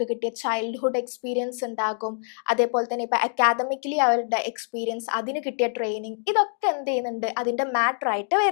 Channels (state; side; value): silent; right; 57 dB below the other